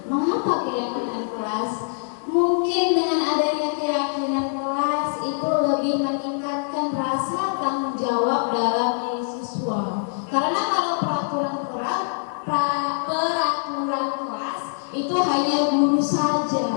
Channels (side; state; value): right; silent; digital silence